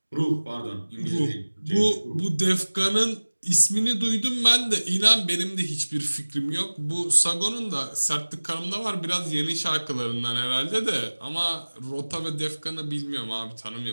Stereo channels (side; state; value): both; inverted; correlation -1.00